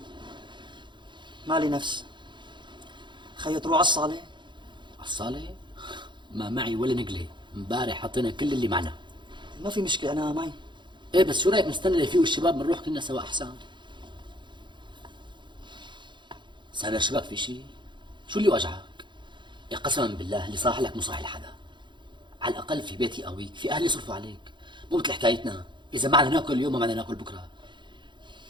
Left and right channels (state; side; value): late; left; 0.23 ms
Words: مالي نفس. خيو تروح على الصالة؟ على الصالة؟ ما معي ولا نقلة، امبارح حطينا كل اللي معنا. ما في مشكلة أنا معي. ايه بس شو رايك نستنى ليفيقوا الشباب بنروح كلنا سوا احسن؟ سامر شبك في شيء؟ شو اللي وجعك؟ يا قسما بالله اللي صاح لك مو صاح لحدا. على الاقل في بيتي قويك، في اهلي يصرفوا عليك، مو مثل حكايتنا، اذا ما بدنا ناكل اليوم ما بدنا ناكل بكره.